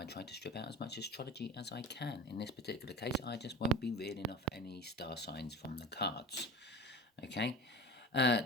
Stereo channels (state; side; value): normal; both; correlation 0.33